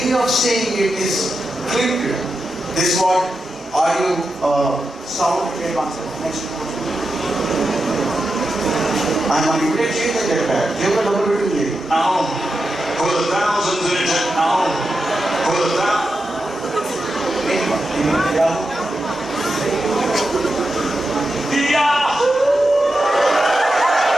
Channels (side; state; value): both; normal; correlation 0.89